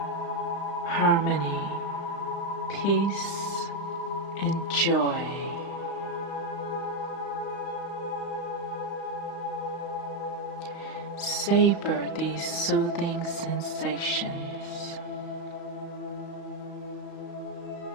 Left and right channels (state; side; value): late; right; 35 ms